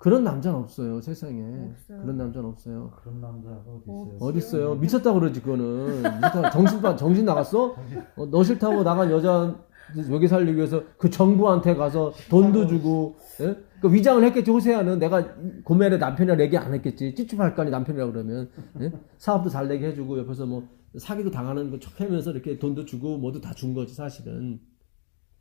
남자는 없어요, 세상에. 없어요. 그런 남자는 없어요. 그런 남자가 어디 있어요? 어디 있어요? 미쳤다고 그러지, 그거는. 미쳤다. 정신 나갔어? 너 싫다고 나간 여자 여기 살리기 위해서 그 정부한테 가서 돈도 주고, 예? 그 위장을 했겠지, 호세아는. 내가 고멜의 남편이라 얘기 안 했겠지. 찝찝할 거 아니, 남편이라고 그러면. 예? 사업도 잘 되게 해주고, 옆에서 뭐, 사기도 당하는 거 척 하면서 이렇게 돈도 주고, 뭐도 다 준 거지, 사실은.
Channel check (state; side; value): silent; right; digital silence